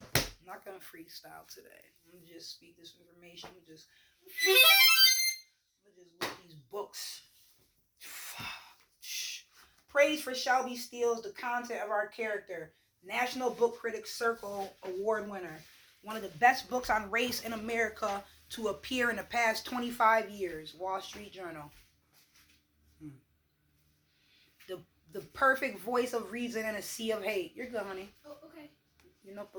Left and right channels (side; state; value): both; identical; correlation 1.00